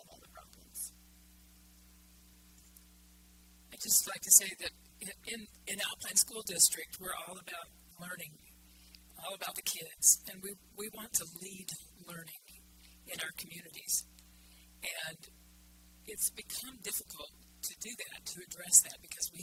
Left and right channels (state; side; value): identical; both; correlation 1.00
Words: all the problems. I'd just like to say that in Alpine School District, we're all about learning, all about the kids, and we want to lead learning in our communities. And it's become difficult to do that, to address that, because